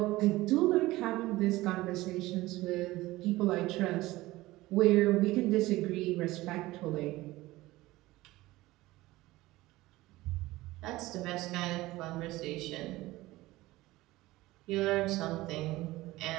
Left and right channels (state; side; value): quieter; left; 18.4 dB